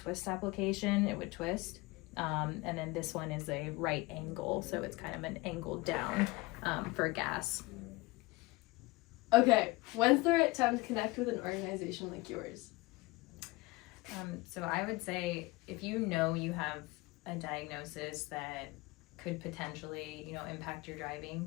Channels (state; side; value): quieter; right; 22.7 dB